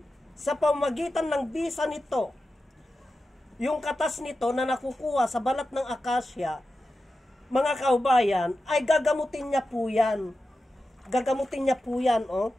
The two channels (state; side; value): normal; both; correlation 0.92